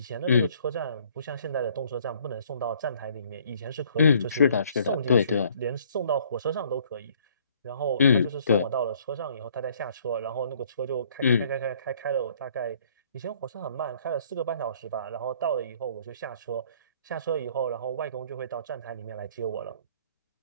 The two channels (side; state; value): both; inverted; correlation -0.60